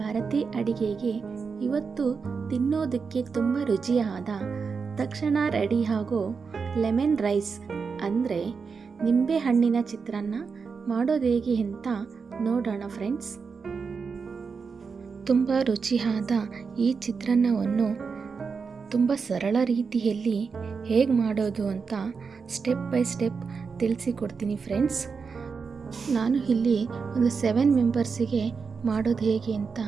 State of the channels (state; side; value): quieter; left; 5.3 dB